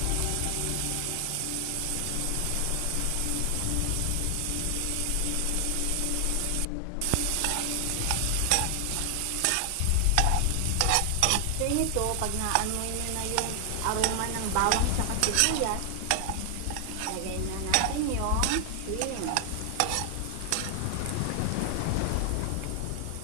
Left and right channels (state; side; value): different; both; correlation 0.00